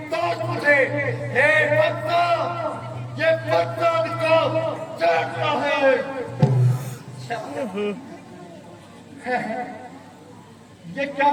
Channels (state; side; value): identical; both; correlation 1.00